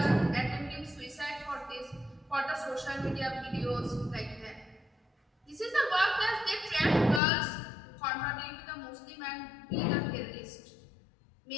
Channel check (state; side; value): drops out; right; at 7.2 s